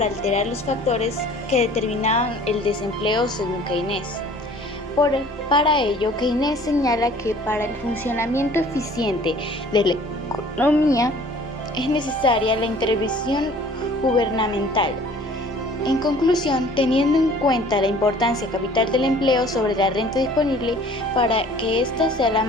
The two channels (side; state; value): both; normal; correlation 0.51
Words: alterar los factores que determinaban el desempleo según Keynes. Para ello, Keynes señala que para el funcionamiento eficiente de la economía es necesaria la intervención gubernamental. En conclusión, teniendo en cuenta la importancia capital del empleo sobre la renta disponible, para que ésta sea la